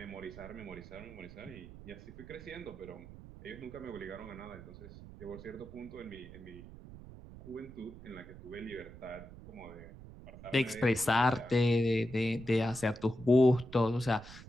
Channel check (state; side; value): noise; right; rumble, 15 dB below the sound